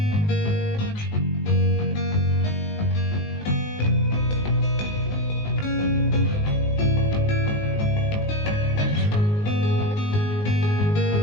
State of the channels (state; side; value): late; right; 19 ms